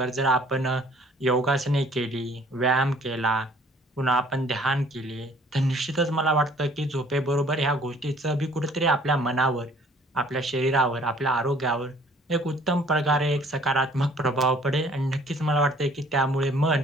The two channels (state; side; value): normal; both; correlation 0.56